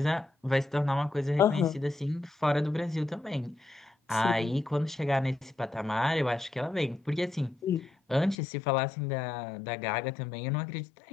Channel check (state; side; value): drops out; right; at 8.3 s